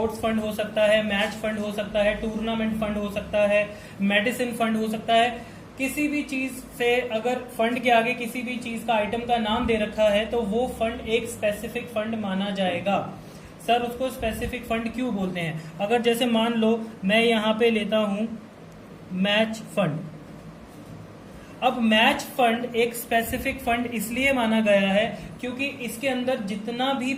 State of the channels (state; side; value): identical; both; correlation 1.00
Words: फंड हो सकता है, मैच फंड हो सकता है, टूर्नामेंट फंड हो सकता है, मेडिसिन फंड हो सकता है। किसी भी चीज से अगर फंड के आगे किसी भी चीज का आइटम का नाम दे रखा है तो वो फंड एक स्पेसिफिक फंड माना जाएगा। सर उसको स्पेसिफिक फंड क्यों बोलते हैं? अगर जैसे मान लो मैं यहां पे लेता हूं मैच फंड। अब मैच फंड एक स्पेसिफिक फंड इसलिए माना गया है क्योंकि इसके अंदर जितना भी